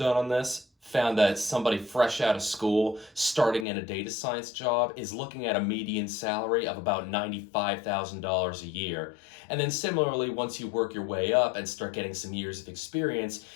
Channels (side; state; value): right; drops out; at 3.7 s